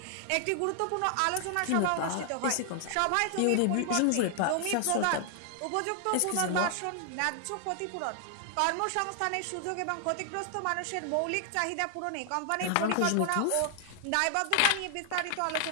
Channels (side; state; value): both; different; correlation 0.00